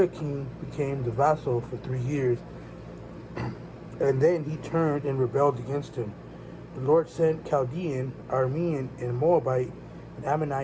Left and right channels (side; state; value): both; identical; correlation 1.00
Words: became the vassal for 3 years, and then he turned and rebelled against him. The Lord sent Chaldean, Aramean, and Moabite and